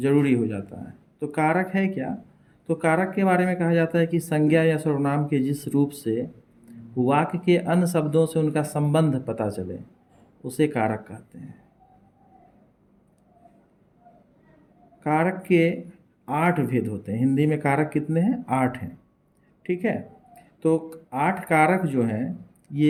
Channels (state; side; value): identical; both; correlation 1.00